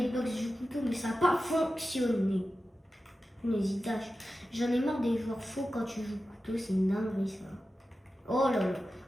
du couteau, mais ça n'a pas fonctionné. N'hésite pas. J'en ai marre des joueurs faux quand tu joues couteau, c'est une dinguerie ça. Oh là là.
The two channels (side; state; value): both; normal; correlation 0.93